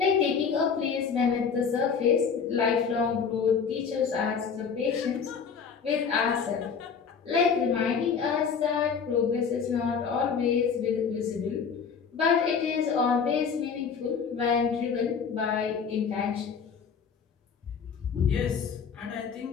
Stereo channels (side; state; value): right; quieter; 6.2 dB